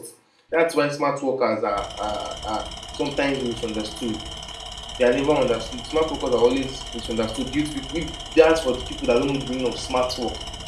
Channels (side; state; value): both; identical; correlation 1.00